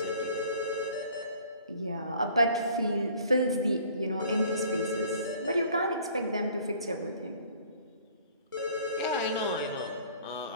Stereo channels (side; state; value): both; inverted; correlation -0.53